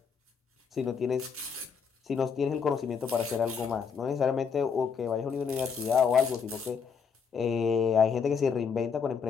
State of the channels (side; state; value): right; quieter; 6.2 dB